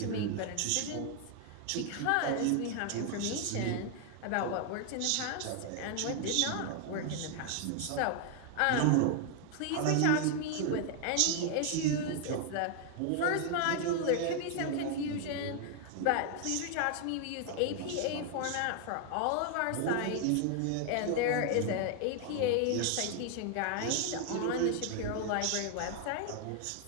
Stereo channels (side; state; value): both; different; correlation 0.00